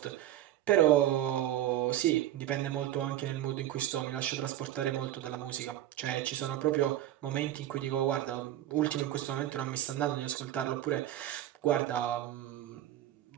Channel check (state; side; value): quieter; left; 12.9 dB